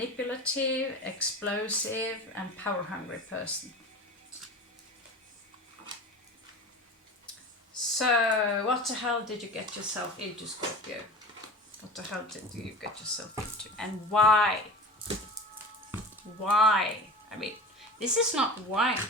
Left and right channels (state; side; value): normal; both; correlation 0.34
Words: explosive, and power-hungry person. So, what the hell did you get yourself into, Scorpio? What the hell did you get yourself into? And why? Why? I mean, this is not why.